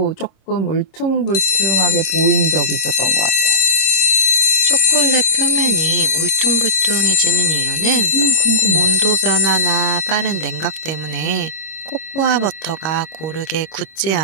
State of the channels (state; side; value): late; right; 26 ms